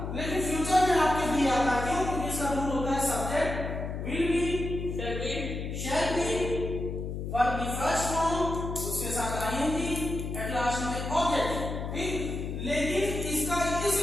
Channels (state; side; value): noise; left; hum, 5 dB below the sound